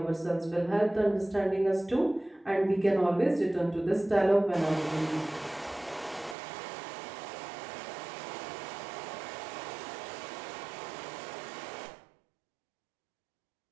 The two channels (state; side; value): drops out; left; at 6.4 s